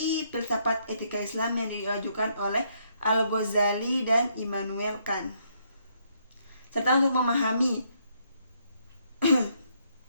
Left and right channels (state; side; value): inverted; both; correlation -0.72